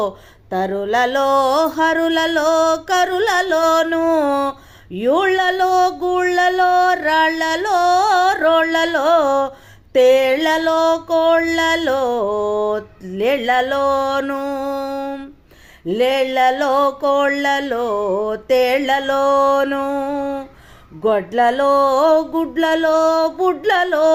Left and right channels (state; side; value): identical; both; correlation 1.00